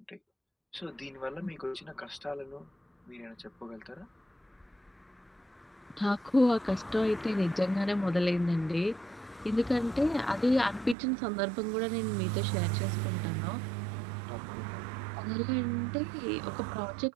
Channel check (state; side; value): drops out; left; at 11.0 s